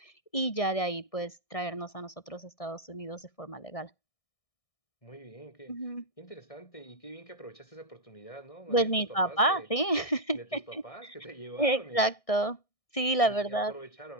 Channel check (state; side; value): late; right; 1.6 ms